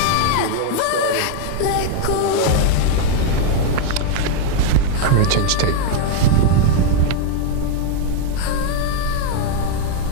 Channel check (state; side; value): different; both; correlation 0.00